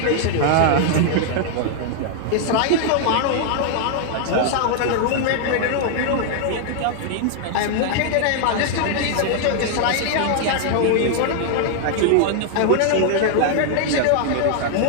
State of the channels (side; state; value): both; different; correlation 0.00